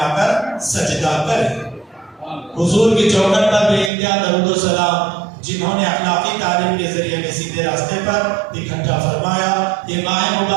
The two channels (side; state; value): left; drops out; at 3.9 s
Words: کر سجدہ کرے۔ حضور کی چوکھٹ پر بے انتہا درود و سلام، جنہوں نے اخلاقی تعلیم کے ذریعے میں سیدھے راستے پر اکٹھا فرمایا۔ یہ ماہ